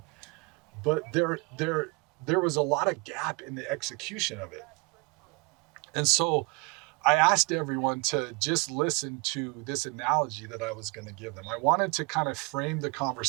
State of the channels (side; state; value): left; quieter; 28.9 dB